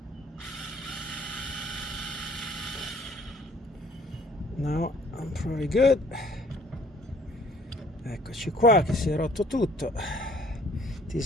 now I'm pretty good. Eccoci qua, che si è rotto tutto. This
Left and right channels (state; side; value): normal; both; correlation 0.57